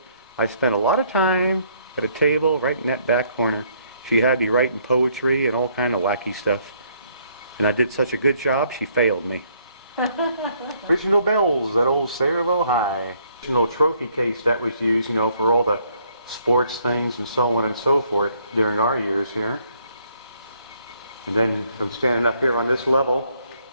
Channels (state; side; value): inverted; both; correlation -0.67